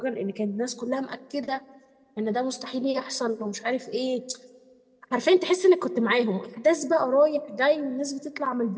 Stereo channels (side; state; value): both; identical; correlation 1.00